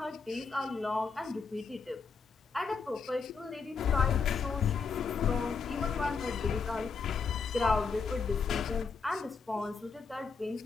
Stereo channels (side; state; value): right; quieter; 5.2 dB